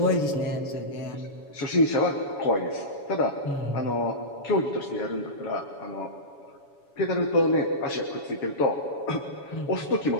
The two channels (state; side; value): late; right; 7.1 ms